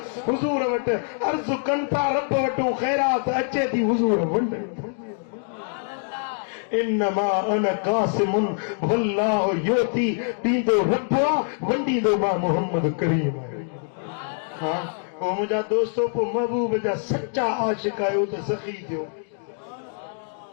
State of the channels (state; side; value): silent; right; 62 dB below the other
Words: हुज़ूर वटि अर्ज़ कनि था, रब वटूं ख़ैरात अचे थी, हुज़ूर वंडनि था। इन्नमा अना कासिमुन वल्लाहु युती, ॾींदो रब आहे, वंडींदो मां मोहम्मद करीम। पोइ मुंहिंजा दोस्तो, पोइ महबूब जा सच्चा आशिक आहियो त सखी थियो,